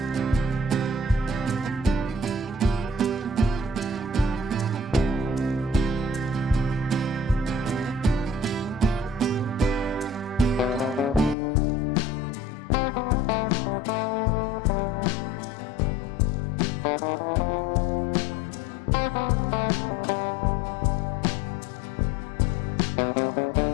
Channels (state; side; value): drops out; right; at 11.4 s